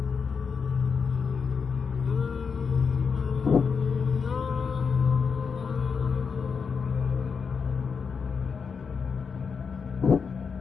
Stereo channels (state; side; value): quieter; right; 5.7 dB